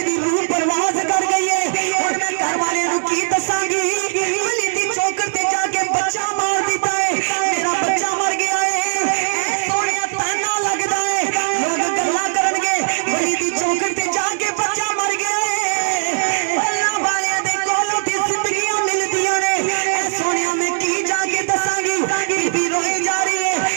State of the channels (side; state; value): left; silent; digital silence